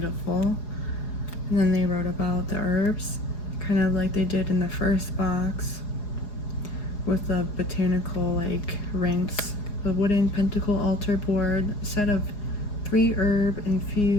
And then they wrote about the herbs, kind of like they did in the first box with the botanical like rinse. A wooden pentacle altar board, a set of 3 herb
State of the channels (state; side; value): late; right; 4.8 ms